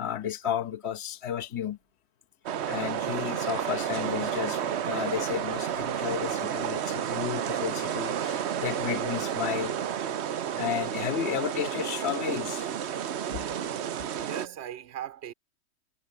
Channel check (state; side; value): late; left; 3.1 ms